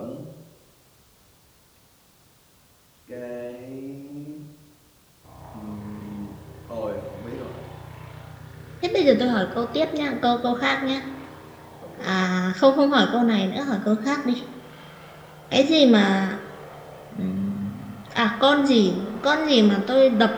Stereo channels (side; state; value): both; identical; correlation 1.00